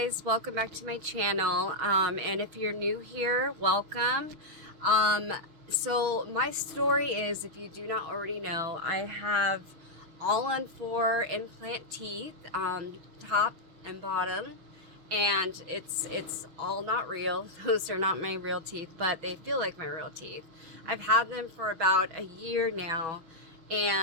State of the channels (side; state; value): left; late; 6.1 ms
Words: welcome back to my channel. And if you're new here, welcome. So my story is, if you do not already know, I have all-on-4 implant teeth, top and bottom, and it's all not real. Those are not my real teeth, but they feel like my real teeth. I've had them for about a year now,